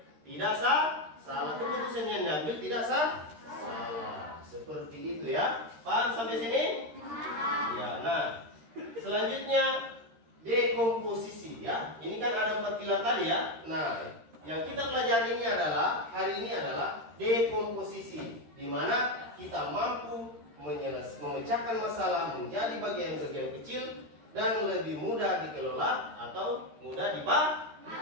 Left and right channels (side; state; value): left; late; 13 ms